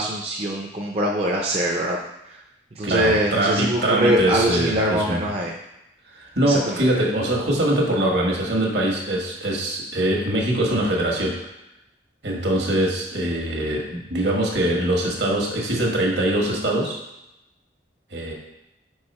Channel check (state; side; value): normal; both; correlation 0.45